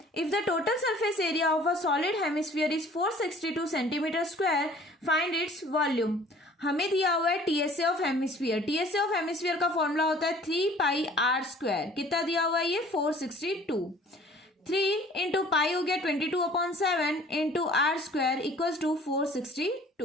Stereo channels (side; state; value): both; normal; correlation 0.51